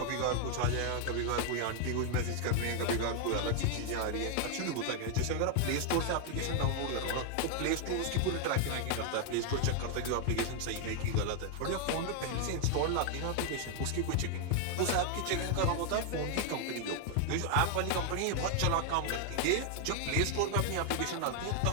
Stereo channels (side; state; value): both; different; correlation 0.00